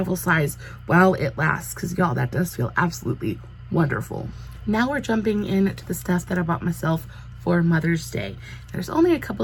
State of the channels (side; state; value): both; identical; correlation 1.00